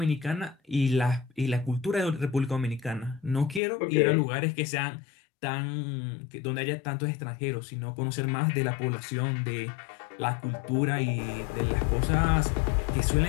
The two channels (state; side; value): drops out; right; at 3.6 s